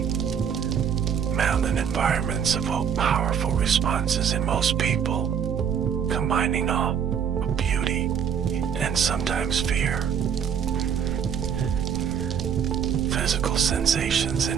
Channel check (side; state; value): left; quieter; 7.8 dB